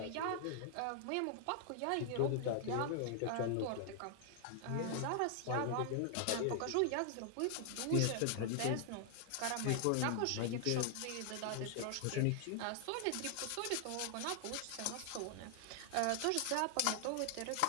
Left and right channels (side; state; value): both; different; correlation 0.00